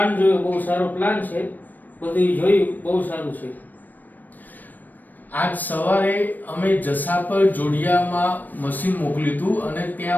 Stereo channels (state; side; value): late; right; 0.087 ms